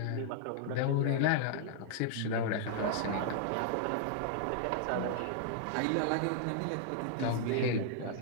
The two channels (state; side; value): different; both; correlation -0.01